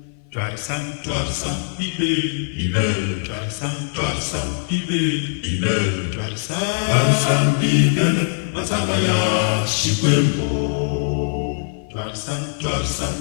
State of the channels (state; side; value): silent; right; 57 dB below the other